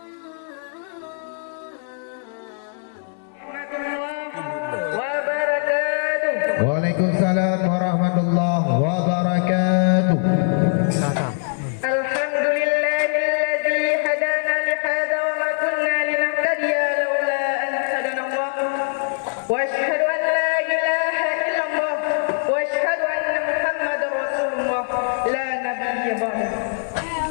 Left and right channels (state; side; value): silent; right; digital silence